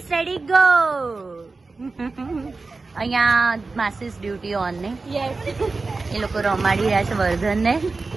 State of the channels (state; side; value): quieter; left; 3.8 dB